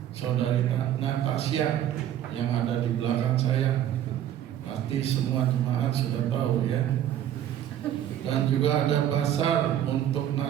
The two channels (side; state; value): left; quieter; 11.1 dB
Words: saudari Natasha yang ada di belakang saya. Pasti semua jemaat sudah tahu ya. Dan juga ada pasar untuk